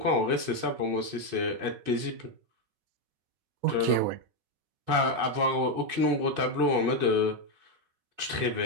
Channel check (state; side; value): late; left; 5.0 ms